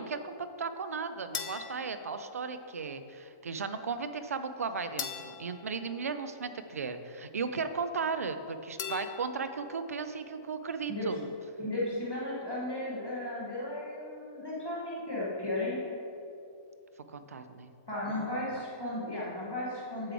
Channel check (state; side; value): late; right; 1.8 ms